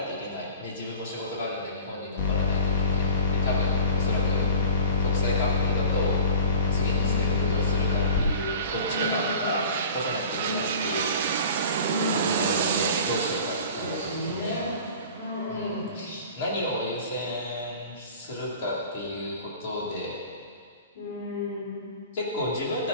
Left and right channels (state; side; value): inverted; both; correlation -0.40